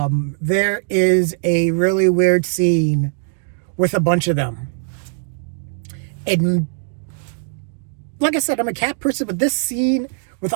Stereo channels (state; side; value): silent; left; digital silence